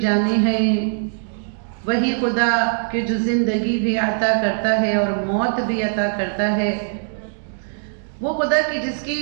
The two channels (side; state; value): left; silent; digital silence